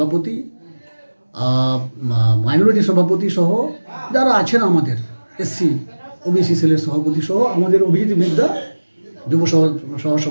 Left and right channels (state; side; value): inverted; both; correlation -1.00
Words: মাইনরিটি সভাপতি সহ যারা আছেন, আমাদের এসসি ওবিসি সেলের সভাপতি সহ আমাদের অভিজিৎ বিদ্যা যুব সহ